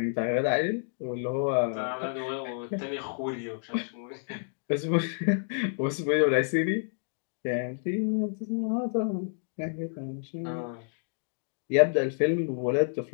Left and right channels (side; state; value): right; silent; digital silence